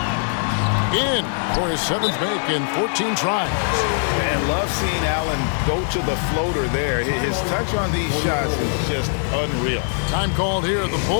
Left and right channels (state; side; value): silent; right; 63 dB below the other